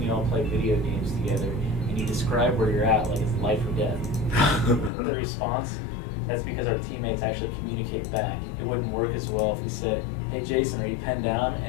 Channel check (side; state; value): right; drops out; at 4.9 s